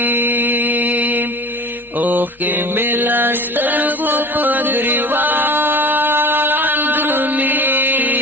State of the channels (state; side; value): normal; both; correlation 0.38